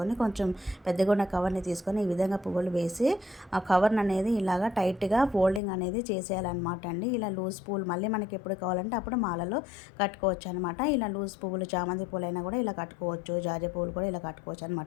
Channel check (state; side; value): drops out; right; at 5.6 s